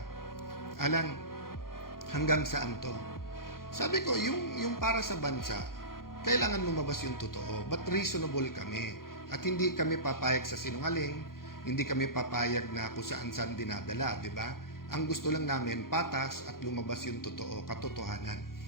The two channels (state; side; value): late; right; 0.92 ms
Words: Alan, hanggang saan to? Sabi ko, yung para sa bansa, kailangan lumabas yung totoo. But reasonable kami. At hindi kami papayag sa sinungaling, hindi kami papayag na kung saan-saan dinadala, di ba? Ang gusto lang namin, patas at lumabas yung totoo, katotohanan.